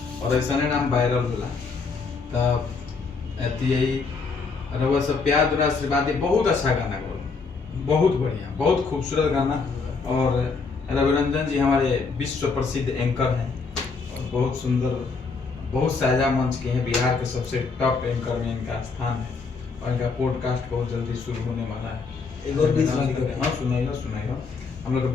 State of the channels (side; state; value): right; quieter; 4.6 dB